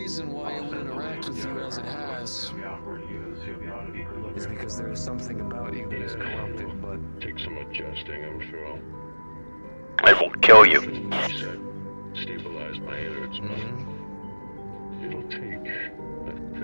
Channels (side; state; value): both; inverted; correlation -1.00